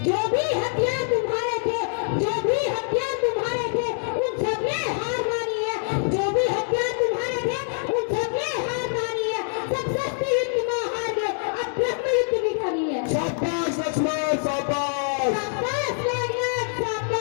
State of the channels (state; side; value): silent; right; digital silence